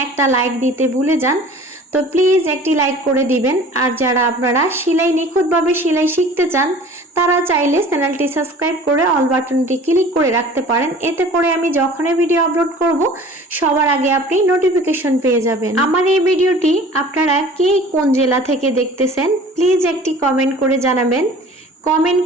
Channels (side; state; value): both; normal; correlation 0.45